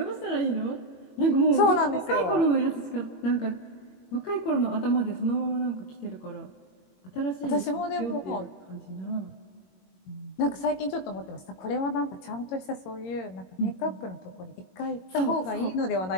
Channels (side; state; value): right; late; 22 ms